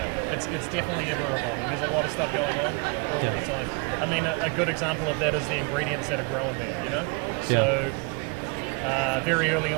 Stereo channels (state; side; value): quieter; left; 31.5 dB